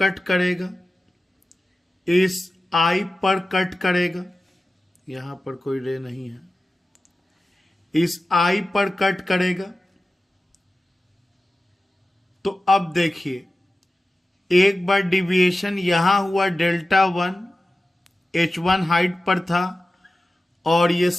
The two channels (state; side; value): normal; both; correlation 0.95